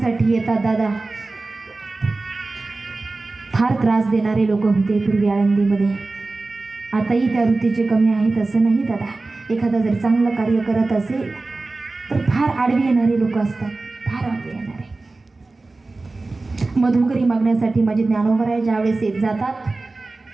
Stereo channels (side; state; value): left; quieter; 3.4 dB